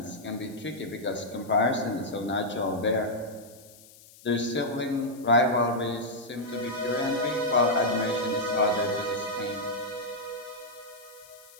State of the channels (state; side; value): noise; left; hiss, 23 dB below the sound